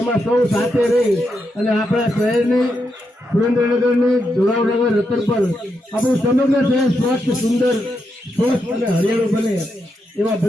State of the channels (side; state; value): both; normal; correlation 0.83